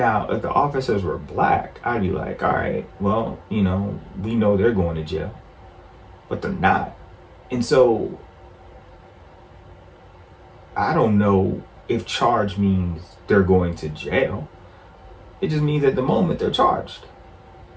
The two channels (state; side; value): identical; both; correlation 1.00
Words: if the officers were black, I'd be like, all right, well, we know they're going to jail, but they're not. And so I don't know if charge means they're going to jail. It just means at the moment they're charged.